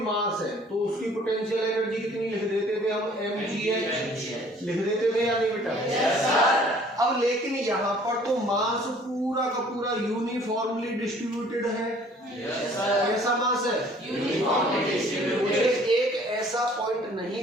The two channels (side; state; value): both; normal; correlation 0.55